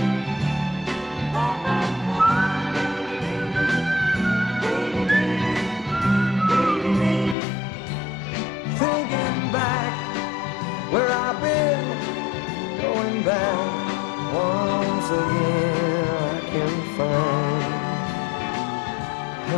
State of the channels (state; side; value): drops out; right; at 7.4 s